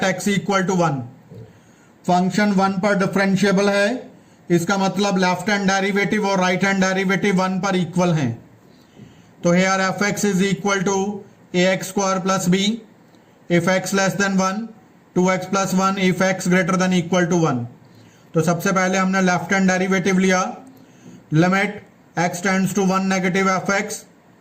x equal to 1। Function 1 पर differentiable है, इसका मतलब left hand derivative और right hand derivative 1 पर equal हैं, तो here f(x) is equal to ax square plus b if x less than 1, 2x plus 1 if x greater than equal to 1। तो सबसे पहले हमने लेफ्ट हैंड डेरिवेटिव लिया, limit x tends to 1 negative f x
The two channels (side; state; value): both; identical; correlation 1.00